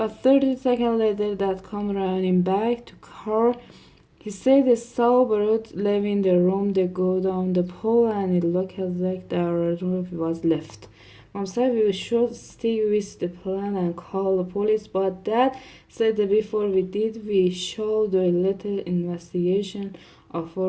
30 seconds later, Dad came running back to car. He said he saw Barut leaving the room. They go down the pole, and it looked like the room was left. Mom said we should stick with the plan and call the police, but Dad said that before we did, we should do a little investigation of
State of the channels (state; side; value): identical; both; correlation 1.00